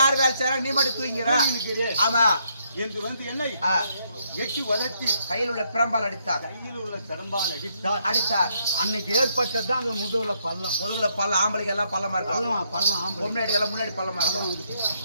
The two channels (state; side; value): inverted; both; correlation -0.74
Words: வேலை செய்யறாங்க, நீ மட்டும் தூங்கிற. ஆமா என்று வந்து என்னை எட்டி வதத்தி கையில் உள்ள பிரம்பால் அடித்தார். கையில் உள்ள பிரம்பால் அடித்தார். அன்னைக்கு ஏற்பட்டதான் அந்த முதுகுல பள்ளம். ஆம்பளைக்கு எல்லாம் பள்ளமா இருக்கும். பள்ளம் முன்னாடி எல்லாம் முன்னாடி பள்ளமா இருக்கும்.